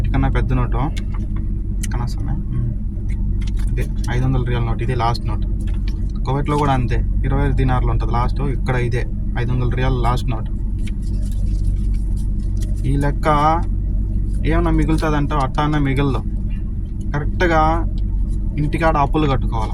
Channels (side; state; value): both; identical; correlation 1.00